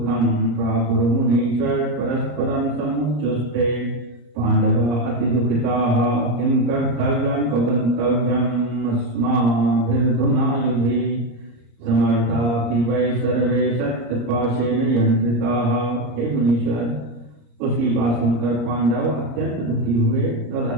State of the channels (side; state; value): left; late; 34 ms